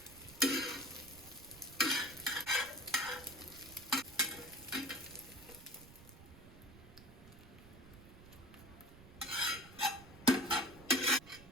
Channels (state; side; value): noise; right; rumble, 19 dB below the sound